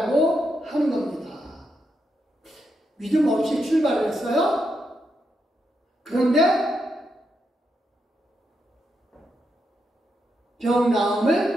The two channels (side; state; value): both; normal; correlation 0.82